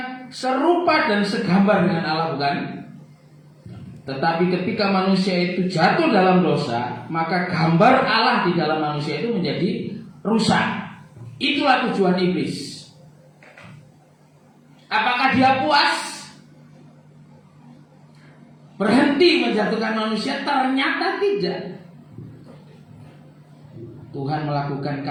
serupa dan segambar dengan Allah, bukan? Tetapi ketika manusia itu jatuh dalam dosa, maka gambar Allah di dalam manusia itu menjadi rusak. Itulah tujuan iblis. Apakah dia puas? Berhenti menjatuhkan manusia? Ternyata tidak. Tuhan melakukan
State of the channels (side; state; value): both; identical; correlation 1.00